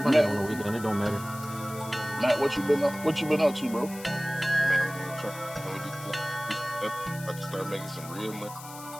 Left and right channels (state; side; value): noise; left; hiss, 15 dB below the sound